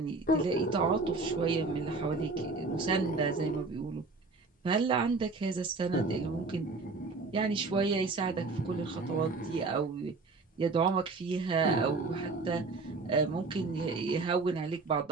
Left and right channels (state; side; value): quieter; left; 3.8 dB